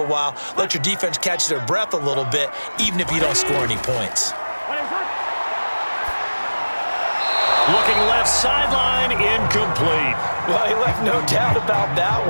while, let your defense catch their breath a little bit, even if you don't score any points. Looking left sideline, incomplete. Well, he left no doubt about that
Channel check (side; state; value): both; inverted; correlation -1.00